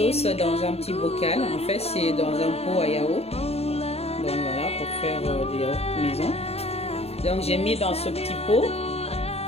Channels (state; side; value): late; right; 0.30 ms